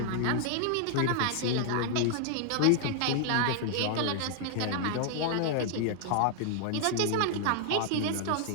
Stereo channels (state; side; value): different; both; correlation 0.00